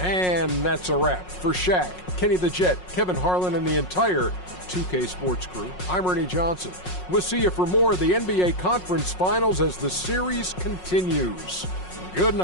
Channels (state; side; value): late; right; 5.5 ms